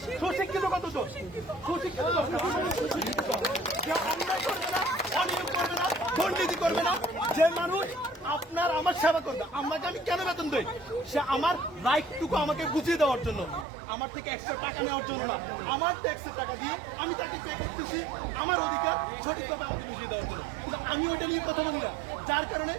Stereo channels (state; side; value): drops out; left; at 13.7 s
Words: সুশিক্ষিত কতজন, সুশিক্ষিত অন্যায় করবে না, অনিয়ম করবে না, দুর্নীতি করবে না, যে মানুষ আপনার আমার সেবা করবে। আমাকে আমি কেন বেতন দেই? সে আমার রাইটটুকু আমাকে বুঝিয়ে দেওয়ার জন্য, আমার থেকে এক্সট্রা টাকা নেওয়ার জন্য না, আমার ট্যাক্সের টাকা দিয়ে আমি তাকে পে করতেছি আমার অধিকার সঠিকভাবে আমাকে বুঝিয়ে দেওয়ার জন্য। কিন্তু আমি ওইটা নিয়ে কথা বলি না, যার কারণে